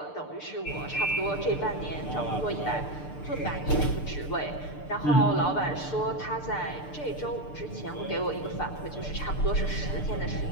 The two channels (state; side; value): late; right; 6.7 ms